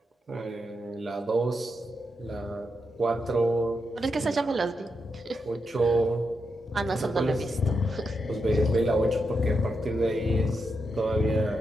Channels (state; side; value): normal; both; correlation 0.85